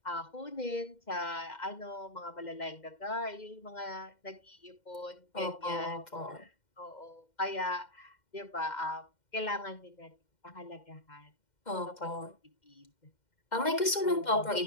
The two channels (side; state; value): right; late; 2.1 ms